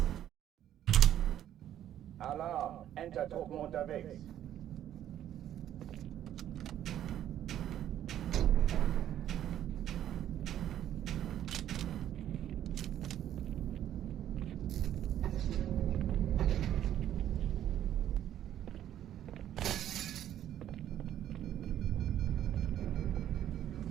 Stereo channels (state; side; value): quieter; left; 11.3 dB